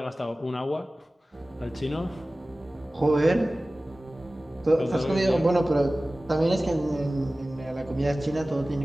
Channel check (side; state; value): both; normal; correlation 0.97